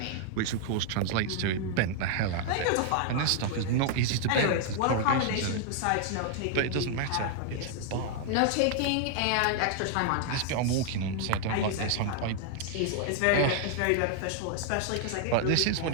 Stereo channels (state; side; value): different; both; correlation 0.00